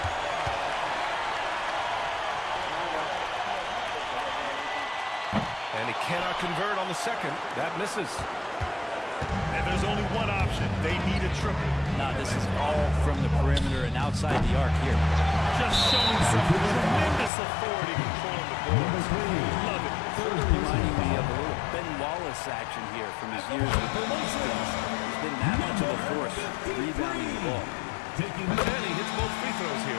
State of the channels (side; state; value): right; drops out; at 17.3 s